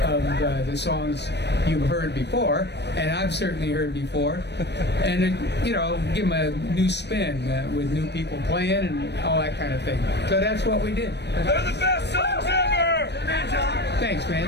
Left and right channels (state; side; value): late; right; 0.50 ms